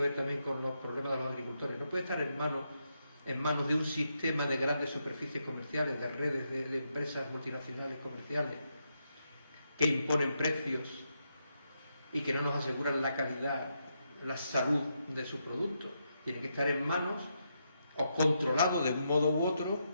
también con los problemas de los agricultores, no puede estar en manos de un sistema de grandes superficies comerciales, de redes de empresas multinacionales comerciales que imponen precios y que no nos aseguran la calidad, la salud de sus productos. Tienen que estar en manos o controlados de un modo u otro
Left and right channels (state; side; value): inverted; both; correlation -0.82